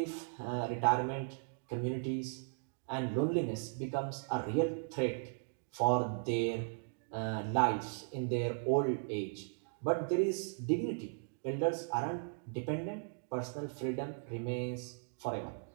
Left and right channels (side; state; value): left; silent; digital silence